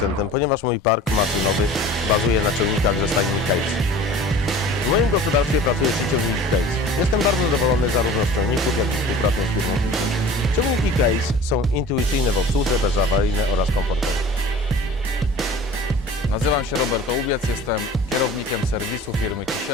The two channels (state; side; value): normal; both; correlation 0.43